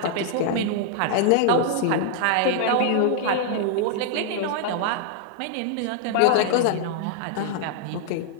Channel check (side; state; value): both; different; correlation -0.01